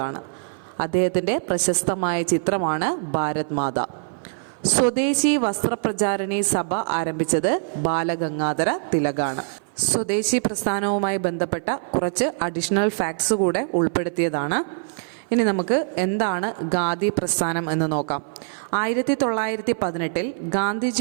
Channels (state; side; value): silent; left; 56 dB below the other